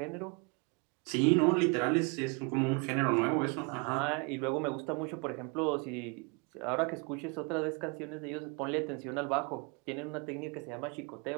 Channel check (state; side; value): quieter; left; 32.3 dB